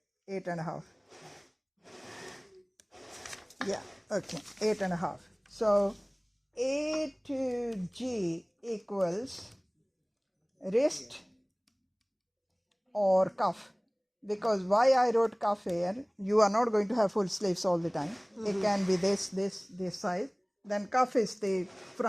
8.5. Yeah, okay, 8.5. So A to G equals wrist or cuff. Because why I wrote cuff here, you are not going to have full sleeves all the time. It can be this size. Then cuff is the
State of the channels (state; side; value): identical; both; correlation 1.00